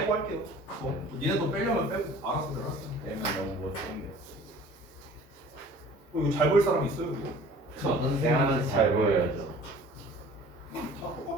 할게요. 니네도 빼려면 빼고 알아서 내가 할게. 되면 너무 못생겨. 이거 잘 보일 사람 있어요 이거? 저는 생각하면서 잘 보여야죠. 다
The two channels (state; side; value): normal; both; correlation 0.48